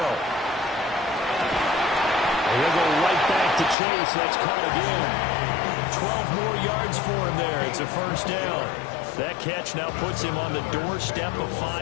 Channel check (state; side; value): drops out; right; at 3.8 s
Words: He'll go right back to Chase. That's caught again. 12 more yards for him there. It's a first down. That catch now puts him on the doorstep of